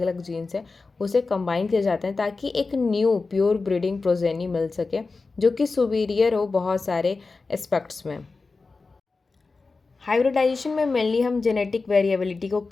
अलग जीन्स हैं उसे कंबाइन किया जाता है ताकि एक न्यू प्योर ब्रीडिंग प्रोजेनी मिल सके जो कि सुपीरियर हो बहुत सारे एस्पेक्ट्स में। हाइब्रिडाइजेशन में मेनली हम जेनेटिक वेरिएबिलिटी को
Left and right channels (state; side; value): quieter; right; 4.0 dB